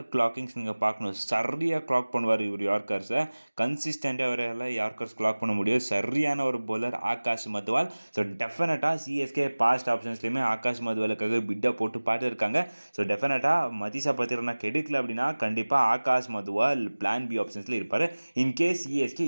கிளாக்கிங்ஸ் நீங்கள் பார்க்கணும். சரியாக கிளாக் பண்ணுவார் இவர் யார்க்கர்ஸை. கன்சிஸ்டண்ட்டாக அவரால் யார்க்கர்ஸ் கிளாக் பண்ண முடியும். சரியான ஒரு பவுலர் ஆகாஷ் மத்வால். ஸோ டெஃபினட்டாக சிஎஸ்கே பாஸ்ட் ஆப்ஷன்ஸ்லேயுமே ஆகாஷ் மத்வாலுக்காக பிட்டை போட்டு பார்த்துருக்காங்க. ஸோ டெஃபினட்டாக மதீஷா பத்திரனா கெடுக்கல அப்படின்னா கண்டிப்பாக ஆகாஷ் மத்வால் பிளான் பி ஆப்ஷன்ஸில் இருப்பார். இன்கேஸ் சிஎஸ்கே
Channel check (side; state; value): both; inverted; correlation -1.00